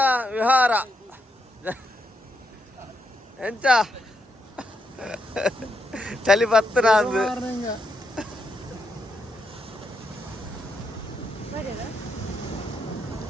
ವಿಹಾರ ಎಂಚ ಚಳಿ ಬತ್ತನ ಅಂದು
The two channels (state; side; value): normal; both; correlation 0.80